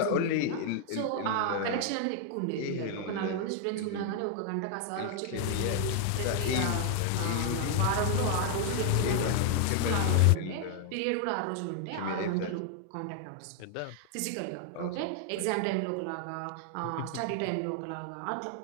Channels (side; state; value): both; different; correlation 0.00